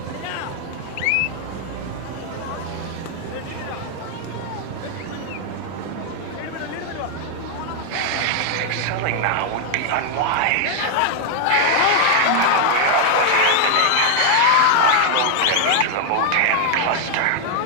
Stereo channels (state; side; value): different; both; correlation 0.00